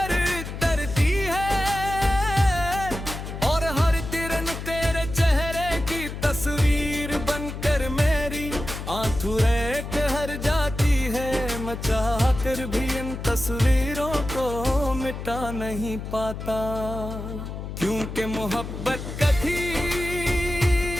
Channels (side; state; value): left; noise; hum, 8 dB below the sound